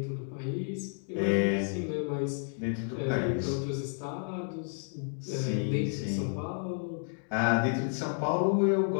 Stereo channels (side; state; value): right; silent; 57 dB below the other